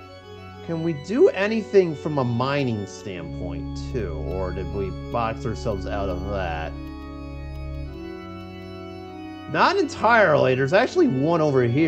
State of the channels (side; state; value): both; identical; correlation 1.00